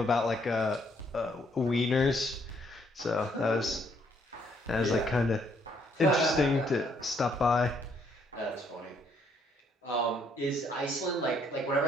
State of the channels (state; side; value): normal; both; correlation 0.69